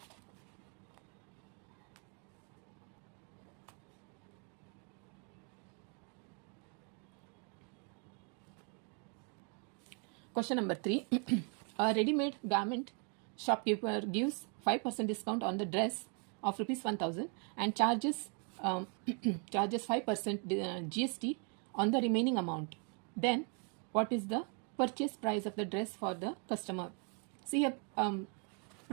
Question number 3. A ready-made garment shopkeeper gives 5% discount on the dress of rupees 1,000 and charges 5% GST on the remaining amount. Then what is the purchase price of the dress for the customer? See here,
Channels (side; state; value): left; quieter; 38.5 dB